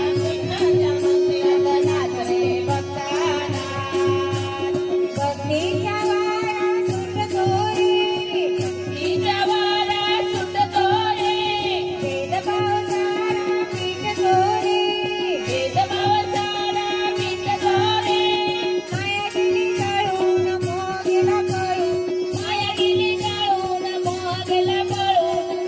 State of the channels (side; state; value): both; identical; correlation 1.00